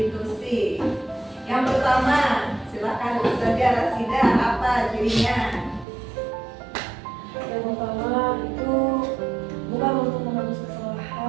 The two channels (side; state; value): left; drops out; at 5.9 s